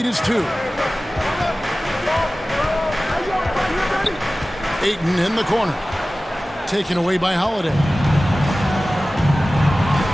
is 2. Ayton in the corner. Taken away by Holiday.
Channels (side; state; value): both; normal; correlation 0.97